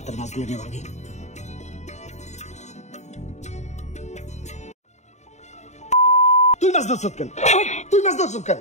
মাছগুলো নিয়ে ভাগি। তুই মাছ ধরছ কেন? তুই মাছ ধরছ কেন?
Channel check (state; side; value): late; right; 0.33 ms